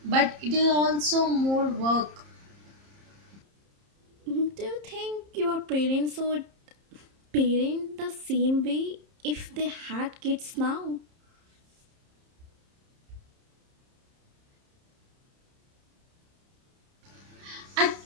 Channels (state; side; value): late; left; 30 ms